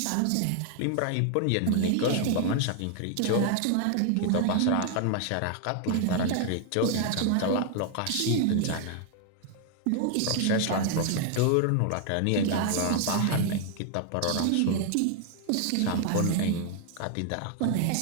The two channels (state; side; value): different; both; correlation 0.00